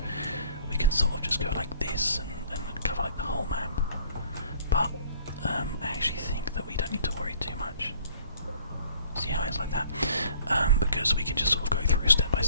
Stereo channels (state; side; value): inverted; both; correlation -0.55